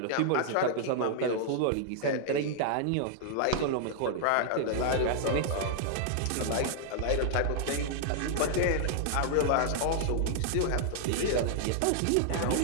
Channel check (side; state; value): both; different; correlation -0.01